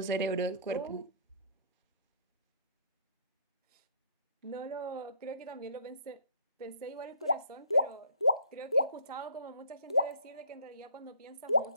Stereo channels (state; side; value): inverted; both; correlation -0.56